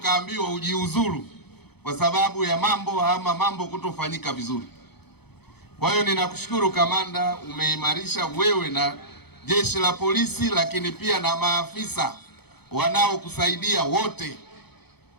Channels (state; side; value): late; right; 0.97 ms